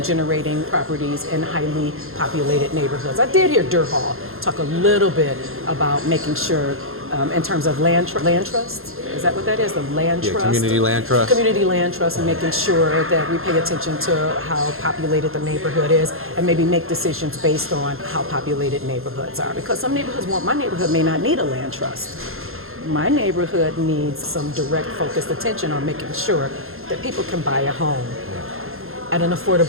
generating properties in highly populated neighborhoods. I did hear Durhal talk a little bit about making sure in terms of land trust. Is that what that is? The land trust? Community land trust. Community land trust, and making sure that we pay attention to how populated the neighborhood is and maybe make decisions based on how populated neighborhoods are. Because some neighborhoods my neighborhood may not need a land trust. My neighborhood needs some direct focused attention on making sure that people can buy a home at an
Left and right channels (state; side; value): late; left; 0.61 ms